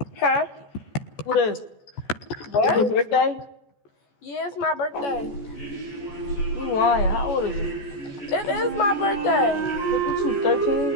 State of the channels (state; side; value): late; right; 14 ms